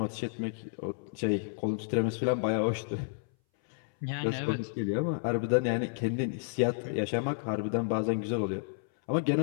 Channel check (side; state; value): right; silent; 57 dB below the other